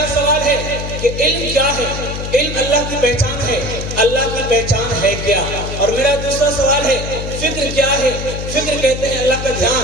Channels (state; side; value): noise; left; hum, 6 dB below the sound